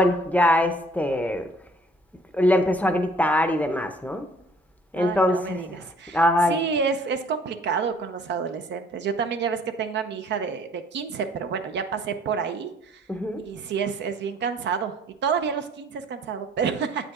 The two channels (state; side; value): normal; both; correlation 0.57